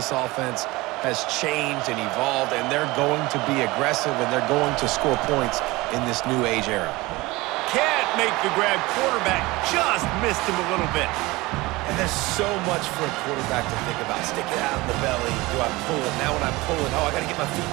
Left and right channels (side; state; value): left; quieter; 21.4 dB